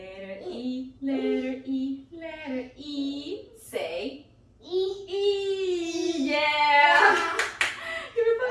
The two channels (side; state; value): both; identical; correlation 1.00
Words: E, letter E, letter E. Say E. Yeah. Give me